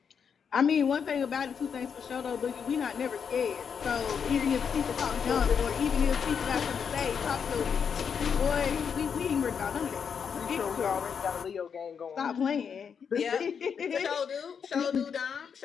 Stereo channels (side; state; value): right; quieter; 6.9 dB